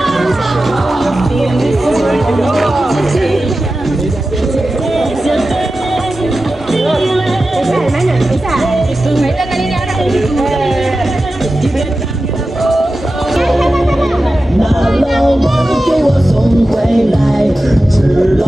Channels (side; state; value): both; normal; correlation 0.93